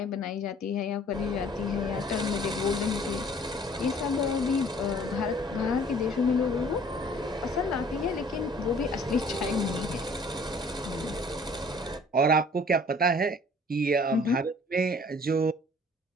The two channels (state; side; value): normal; both; correlation 0.53